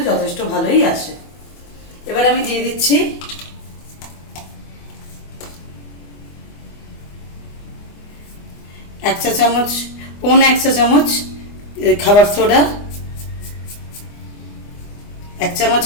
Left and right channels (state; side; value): late; right; 24 ms